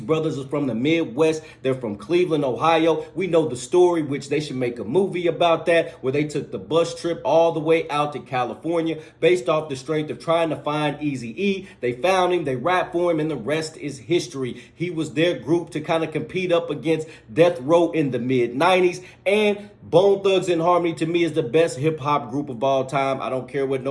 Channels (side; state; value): both; identical; correlation 1.00